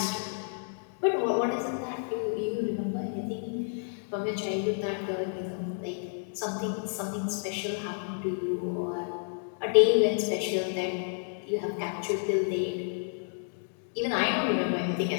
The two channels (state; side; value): silent; right; digital silence